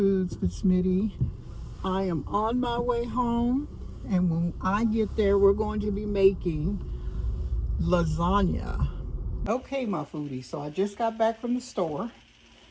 with Smitty. I am on my way home, and when I get there, we're going to be making lasagna. Okay, my foodies, so I just got back from the store,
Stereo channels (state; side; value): identical; both; correlation 1.00